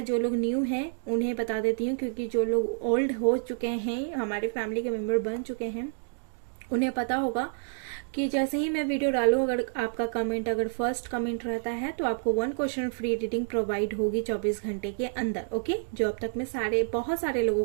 जो लोग न्यू हैं उन्हें बता देती हूँ, क्योंकि जो लोग ओल्ड हो चुके हैं, हमारे फैमिली के मेंबर बन चुके हैं, उन्हें पता होगा कि जैसे ही मैं वीडियो डालूं, अगर आपका कमेंट अगर फर्स्ट कमेंट रहता है तो आपको 1 क्वेश्चन फ्री रीडिंग प्रोवाइड होगी 24 घंटे के अंदर। ओके, जो अब तक में बहुत सारे लोगों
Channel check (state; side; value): silent; left; digital silence